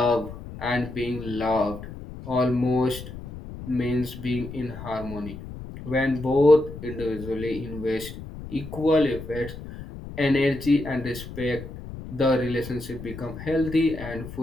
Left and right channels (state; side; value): noise; left; rumble, 12 dB below the sound